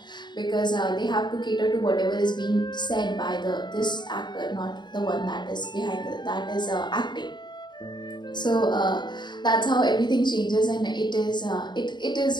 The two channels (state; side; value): late; right; 0.22 ms